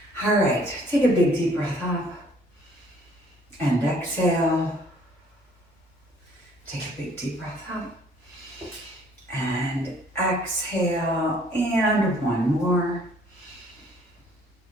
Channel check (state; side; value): normal; both; correlation 0.59